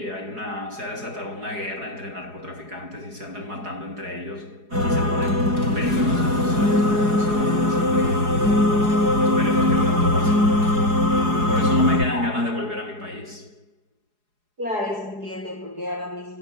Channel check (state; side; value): late; left; 4.8 ms